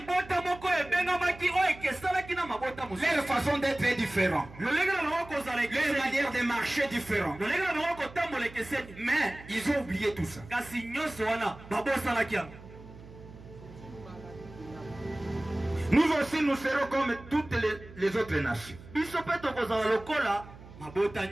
façon d'être est différente. Leur manière de marcher est différente. Mais ils ont oublié tout ça. Nous aussi, nous serons comme toutes les autres nations.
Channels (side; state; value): right; noise; hum, 18 dB below the sound